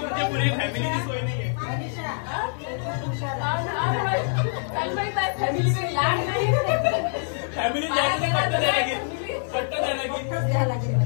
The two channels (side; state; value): right; silent; digital silence